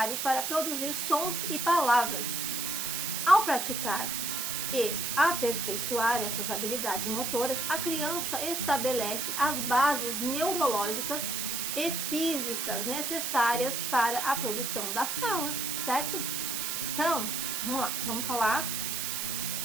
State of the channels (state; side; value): noise; right; hiss, 1 dB below the sound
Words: para produzir sons e palavras. Ao praticar e aperfeiçoar essas habilidades motoras, a criança estabelece as bases neurológicas e físicas necessárias para a produção da fala, certo? Então, vamos lá, vamos falar